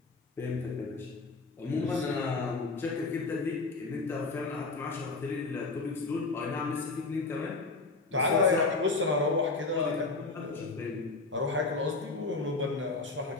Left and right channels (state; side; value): quieter; right; 3.7 dB